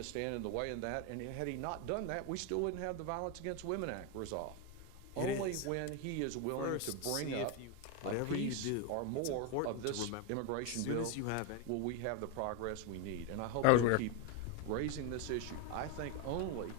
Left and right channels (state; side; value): different; both; correlation 0.01